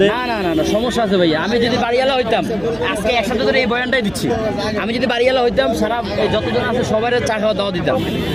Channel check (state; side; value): noise; right; hum, 21 dB below the sound